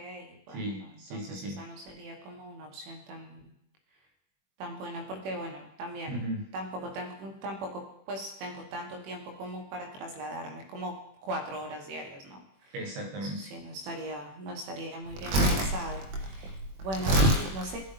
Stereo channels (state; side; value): late; left; 21 ms